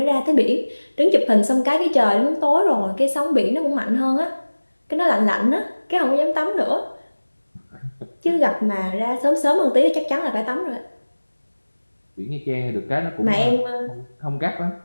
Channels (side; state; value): both; inverted; correlation -1.00